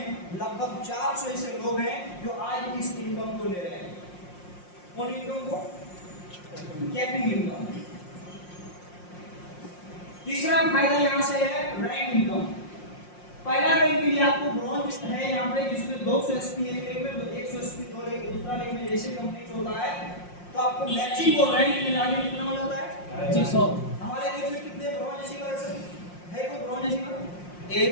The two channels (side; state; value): right; late; 5.6 ms